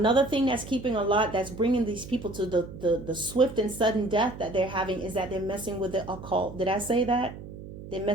thing that's bringing these people to the swift and sudden death that they're having is that they're messing with the occult. Did I say that? They're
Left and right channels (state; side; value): noise; right; hum, 13 dB below the sound